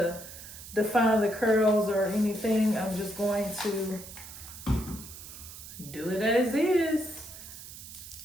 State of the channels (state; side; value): noise; right; hiss, 14 dB below the sound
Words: define the curls or anything. I'm just going to do it as is.